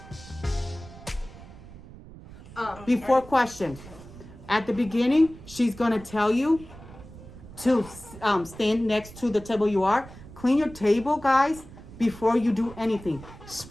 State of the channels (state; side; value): noise; right; rumble, 17 dB below the sound